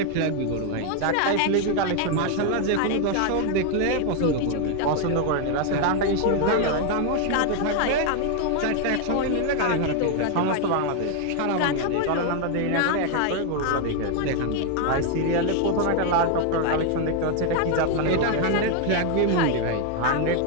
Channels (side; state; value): both; different; correlation 0.01